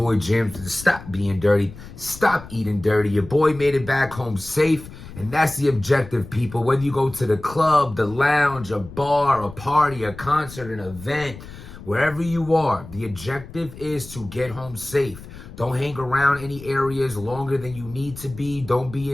Jim. Stop being dirty. Stop eating dirty. Your boy made it back home safe. And that's the objective, people. Whether you go to the club, the lounge, a bar, a party, a concert, an event, wherever you are, the objective is to get home safe. Don't hang around any areas longer than you need to be. Don't be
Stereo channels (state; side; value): noise; left; rumble, 16 dB below the sound